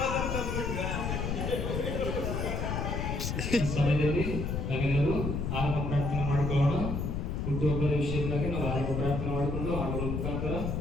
ಸಮಯದಲ್ಲಿ ನಾವೆಲ್ಲರೂ ಆರಂಭ ಪ್ರಾರ್ಥನೆ ಮಾಡಿಕೊಳ್ಳೋಣ. ಹುಟ್ಟುಹಬ್ಬದ ವಿಷಯಕ್ಕಾಗಿ ನಾವು ಆರಂಭ ಪ್ರಾರ್ಥನೆ ಮಾಡಿಕೊಂಡು ಹಾಡುಗಳ ಮುಖಾಂತರ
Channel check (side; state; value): left; noise; rumble, 1 dB below the sound